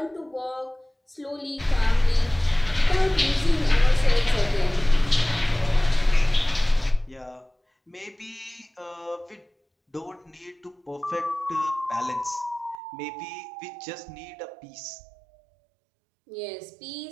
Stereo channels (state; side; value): drops out; left; at 12.8 s